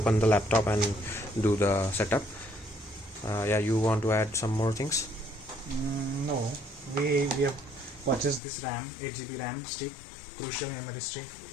the laptop and do the setup. Yeah, you want to add some more things? No, we have purchased this RAM, 8 GB RAM stick, crucial memory stick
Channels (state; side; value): drops out; right; at 8.4 s